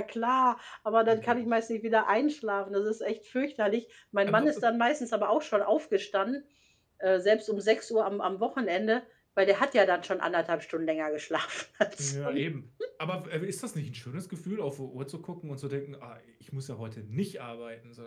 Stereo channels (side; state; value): both; identical; correlation 1.00